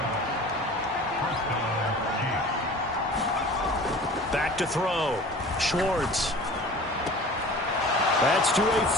Back to throw. Schwartz. That's to a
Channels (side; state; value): both; normal; correlation 0.42